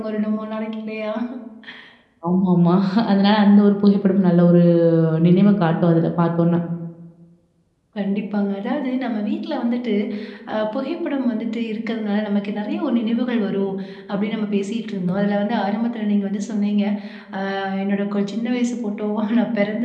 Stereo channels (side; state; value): both; identical; correlation 1.00